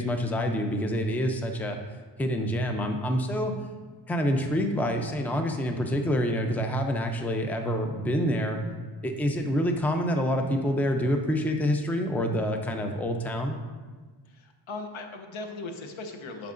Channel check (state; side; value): normal; both; correlation 0.62